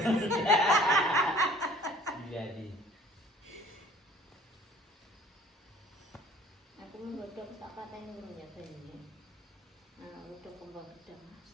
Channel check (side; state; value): both; normal; correlation 0.52